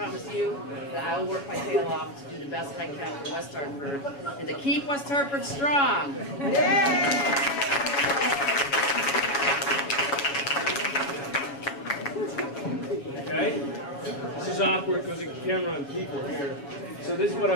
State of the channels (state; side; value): late; right; 7.2 ms